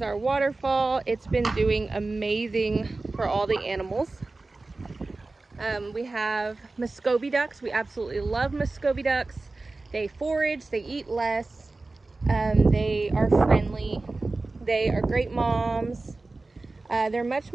our waterfall. It's been doing amazing for all the animals. We have Muscovy ducks. We absolutely love Muscovy ducks. They forage, they eat less. They are friendly. They are great moms. They're much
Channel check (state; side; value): quieter; left; 3.4 dB